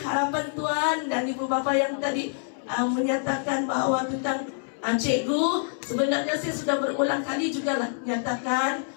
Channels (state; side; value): silent; right; 61 dB below the other